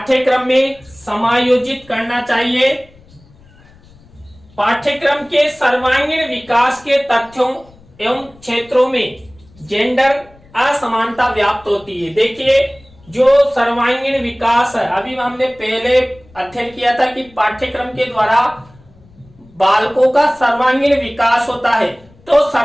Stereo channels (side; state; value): left; noise; rumble, 27 dB below the sound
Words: में समायोजित करना चाहिए। पाठ्यक्रम के सर्वांगीण विकास के तथ्यों एवं क्षेत्रों में जेंडर असमानता व्याप्त होती है। देखिए, जो सर्वांगीण विकास है, अभी हमने पहले अध्ययन किया था कि पाठ्यक्रम के द्वारा बालकों का सर्वांगीण विकास होता है, तो